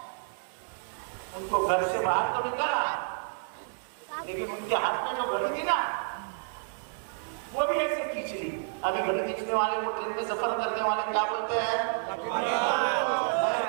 उनको घर से बाहर तो निकाला, लेकिन उनके हाथ में जो घड़ी थी ना, वो भी ऐसे खींच ली। अभी घड़ी खींचने वाले को, ट्रेन में सफर करने वाले क्या बोलते हैं?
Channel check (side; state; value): left; silent; 58 dB below the other